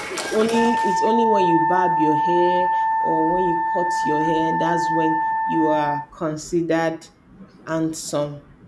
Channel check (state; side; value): identical; both; correlation 1.00